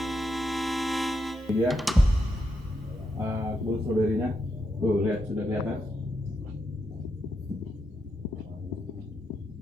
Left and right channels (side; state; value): both; normal; correlation 0.83